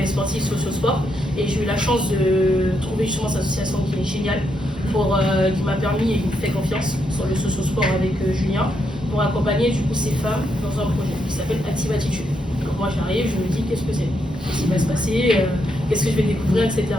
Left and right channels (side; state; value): both; normal; correlation 0.79